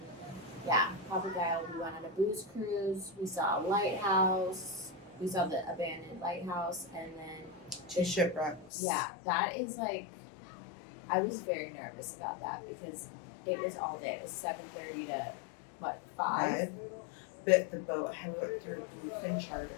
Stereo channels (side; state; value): right; drops out; at 8.7 s